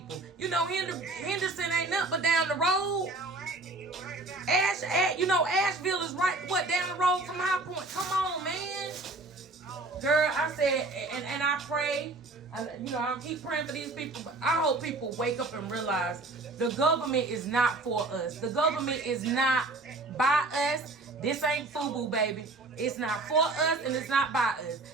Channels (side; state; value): left; quieter; 3.1 dB